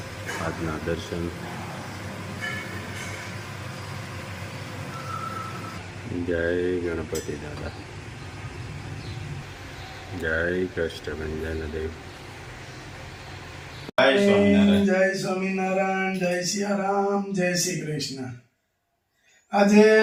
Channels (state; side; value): identical; both; correlation 1.00